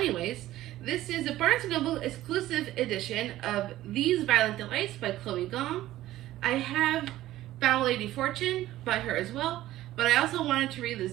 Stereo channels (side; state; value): left; quieter; 14.9 dB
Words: this is a Barnes & Noble exclusive edition of These Violent Delights by Chloe Gong. I have Foul Lady Fortune by her as well, but I also wanted to read this